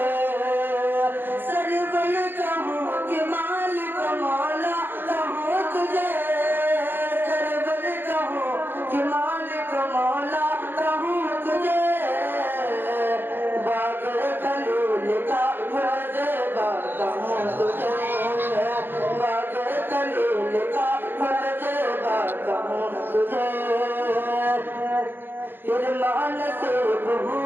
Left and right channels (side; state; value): left; late; 0.098 ms